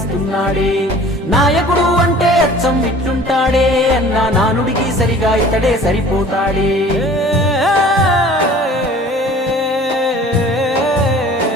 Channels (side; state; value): both; normal; correlation 0.47